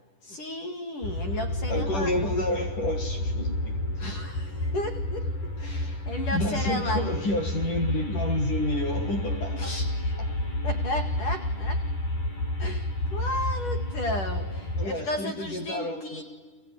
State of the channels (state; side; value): late; right; 10 ms